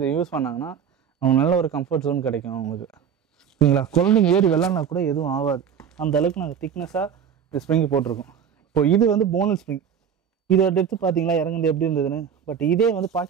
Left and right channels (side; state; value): left; quieter; 7.8 dB